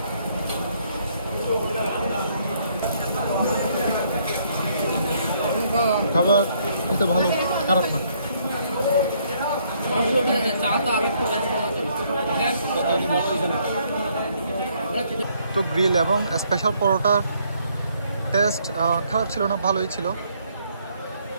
খাবার খেতে ভালো, খারাপ না। তো গ্রিল এবং স্পেশাল পরোটার টেস্ট খারাপ ছিল না, ভালোই ছিল।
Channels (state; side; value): inverted; both; correlation -0.68